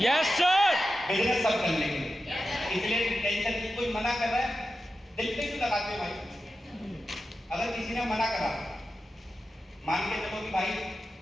sir. बिजनेस सब कर लेंगे, इसलिए टेंशन की। कोई मना कर रहा है, दिल पे क्यों लगाते हो भाई? अगर किसी ने मना करा, मान के चलो कि भाई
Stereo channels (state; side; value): normal; both; correlation 0.91